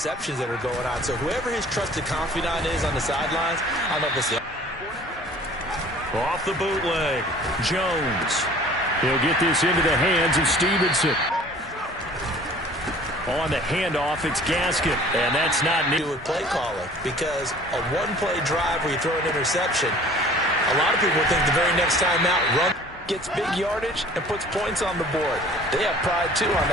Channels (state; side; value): normal; both; correlation 0.49